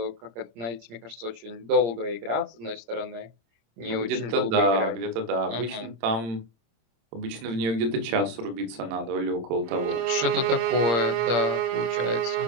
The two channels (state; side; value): late; left; 26 ms